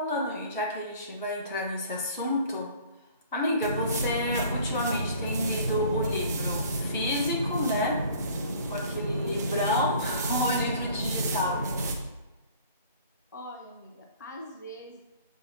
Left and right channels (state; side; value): inverted; both; correlation -0.50